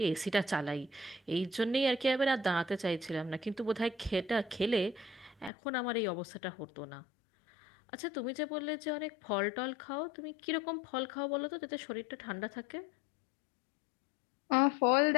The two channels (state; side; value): drops out; right; at 5.5 s